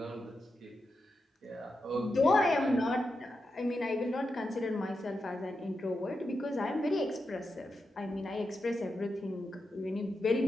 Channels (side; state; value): both; normal; correlation 0.88